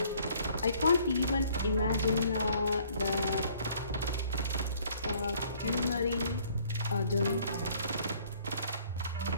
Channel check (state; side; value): inverted; both; correlation -0.59